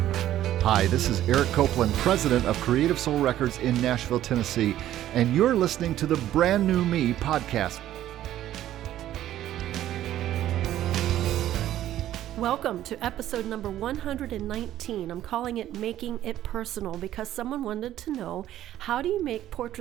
Hi, this is Eric Copeland, president of Creative Soul Records in Nashville, Tennessee, and you're listening to the Brand New Me podcast. Welcome to episode number 119. I'm calling it Making It Personal because someone wanted to know, how do you make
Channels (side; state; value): left; quieter; 12.8 dB